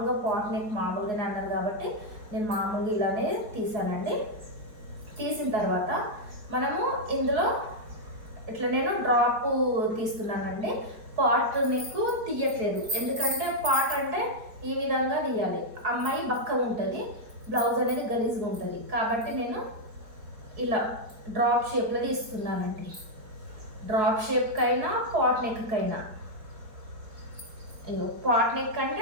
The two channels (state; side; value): late; left; 4.7 ms